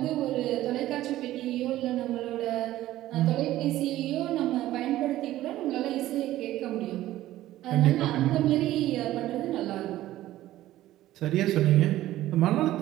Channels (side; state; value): left; quieter; 14.7 dB